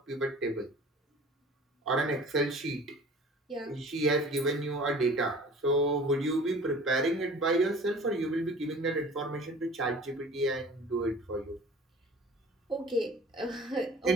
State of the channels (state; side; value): normal; both; correlation 0.45